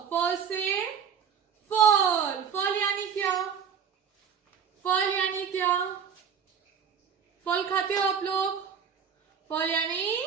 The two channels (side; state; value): left; quieter; 7.2 dB